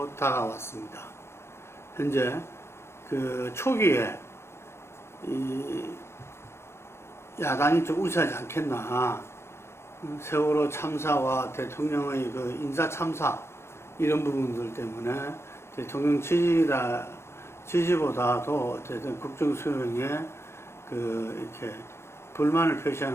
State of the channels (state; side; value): late; right; 0.12 ms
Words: 다가왔습니다. 현재 그 초기에 이 야당이 좀 우세하지 않겠나. 세월호 참사와 대통령의 그 인사 참사 이런 부분들 때문에 대통령 지지보다도 어쨌든 국정 수행에 그 이렇게 불만을